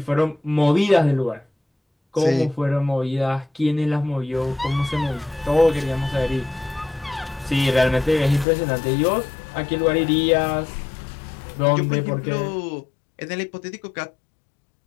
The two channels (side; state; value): right; drops out; at 8.5 s